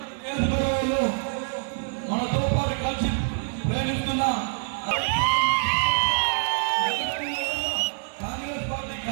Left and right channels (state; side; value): silent; left; digital silence